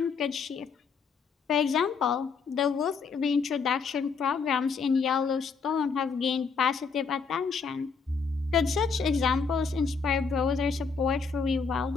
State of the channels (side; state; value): right; quieter; 5.3 dB